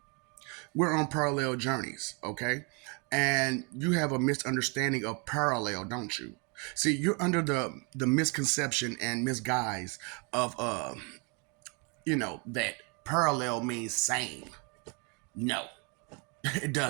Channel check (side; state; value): left; quieter; 33.4 dB